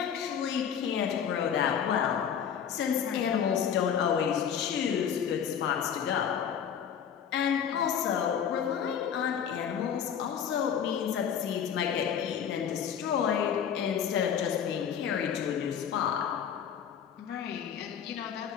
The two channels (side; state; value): right; quieter; 8.2 dB